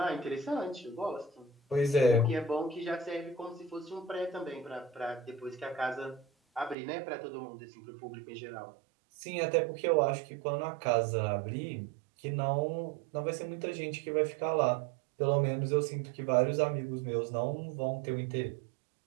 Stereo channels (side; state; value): left; drops out; at 6.8 s